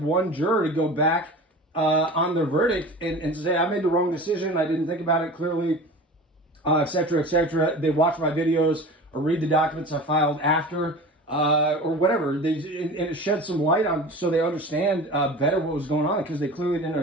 juror to go back on their verdict and say, I made the wrong decision, I didn't think about it clearly, etc., etc. They watch my videos or read the documents I filed after, or whatever. And it sheds some light on, so they understand better what was going on, because they clearly didn't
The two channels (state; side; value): normal; both; correlation 0.36